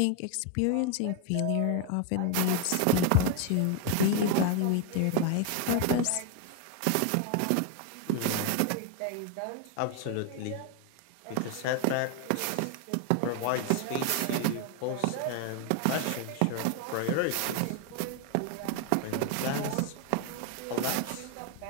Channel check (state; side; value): different; both; correlation 0.01